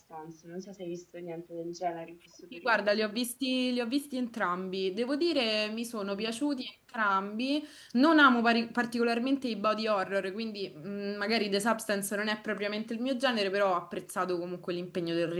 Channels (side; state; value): both; identical; correlation 1.00